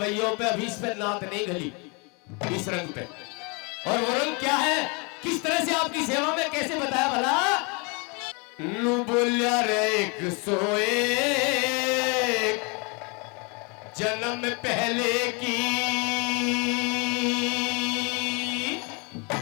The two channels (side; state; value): right; quieter; 31.8 dB